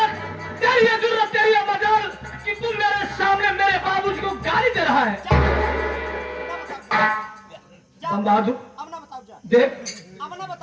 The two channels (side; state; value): both; identical; correlation 1.00